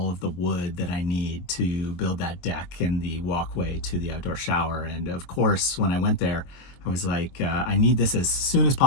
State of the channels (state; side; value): late; right; 22 ms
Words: of the wood that I need to build that deck and the walkway to the outdoor shower. And of course, when I went there, I was like, I need this as soon as